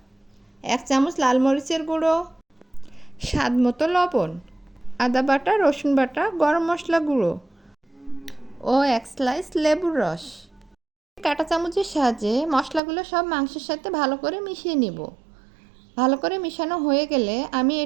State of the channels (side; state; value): left; drops out; at 12.8 s